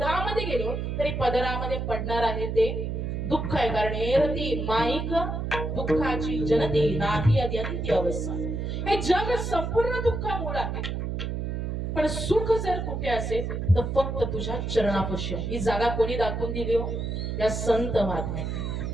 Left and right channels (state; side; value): noise; right; hum, 3 dB below the sound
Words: गेलो तरी पदरामध्ये पडणार आहे ते दुःख आहे. कारण एरती माईक दुःखाची जनती नाही अद्यंती अवस्था. हे जग संपूर्ण दुःखामुळे आहे, पण सुख जर कुठे असेल तर फक्त तुझ्या चरणापाशी आहे. ही जागा कोणी दाखवून दिली हो? या संत महात्म्या.